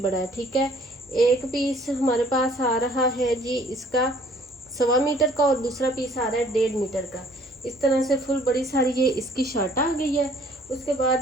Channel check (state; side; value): normal; both; correlation 0.57